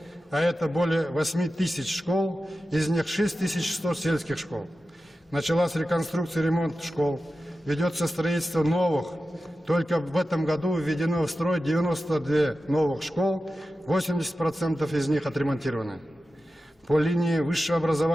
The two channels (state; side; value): normal; both; correlation 0.93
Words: а это более 8 тысяч школ, из них 6100 сельских школ. Началась реконструкция и ремонт школ, ведется строительство новых. Только в этом году введено в строй 92 новых школ, 80% из них отремонтированы. По линии высшего